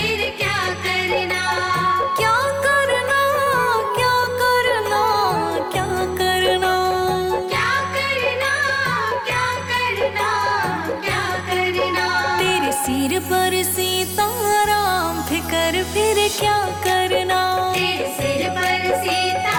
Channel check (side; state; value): both; identical; correlation 1.00